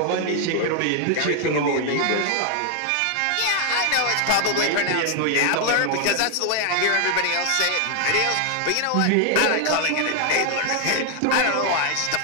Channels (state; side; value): different; both; correlation 0.00